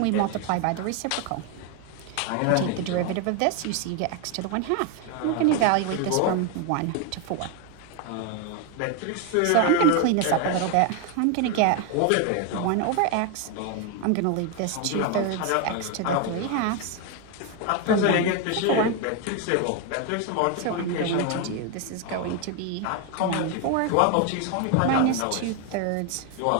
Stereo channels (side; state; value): both; different; correlation 0.01